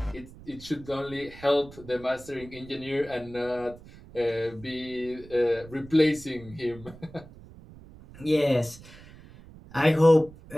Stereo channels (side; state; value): right; noise; rumble, 19 dB below the sound